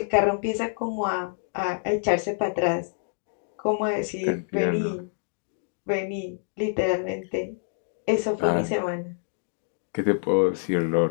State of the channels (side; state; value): right; silent; digital silence